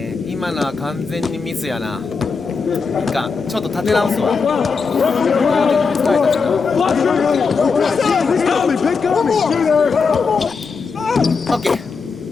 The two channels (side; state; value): right; quieter; 5.0 dB